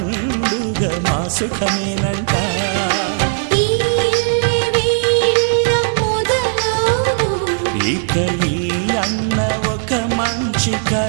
మా సుఖమేనంట. ఇక ఈ అన్న ఒక మంచి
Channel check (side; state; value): left; silent; digital silence